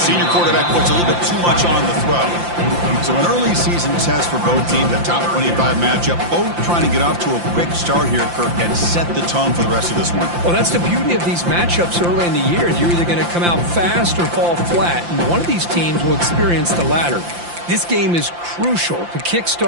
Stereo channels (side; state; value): left; late; 5.8 ms